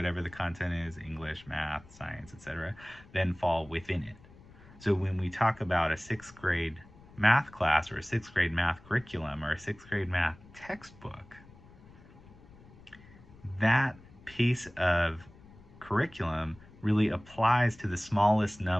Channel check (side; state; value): left; noise; rumble, 22 dB below the sound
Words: the content is, English, math, science, etc., than fall within it. So when we talk about a 6th grade math class or a 6th grade math curriculum or a 6th grade math textbook, that piece of curriculum really applies to the smallest